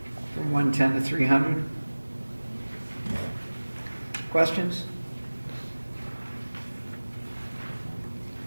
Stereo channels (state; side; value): inverted; both; correlation -1.00